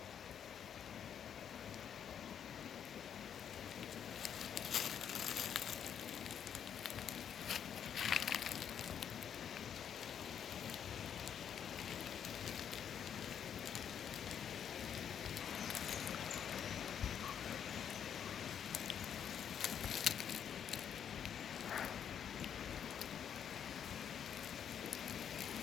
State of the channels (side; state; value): right; quieter; 8.5 dB